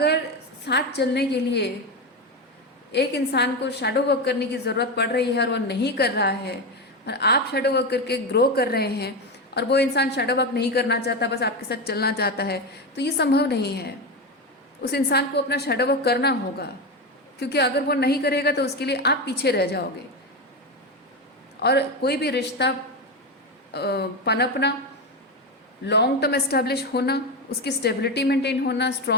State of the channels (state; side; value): normal; both; correlation 0.15